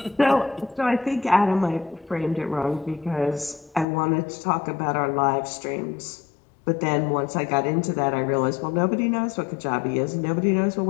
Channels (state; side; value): drops out; right; at 3.9 s